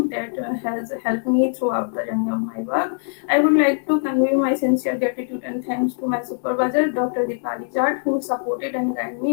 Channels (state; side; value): silent; right; 64 dB below the other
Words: that has helped me throughout the journey of my work. I would like to convey my sincere gratitude and thanks to my supervisor, Dr. Dipali Jat, who supported and guided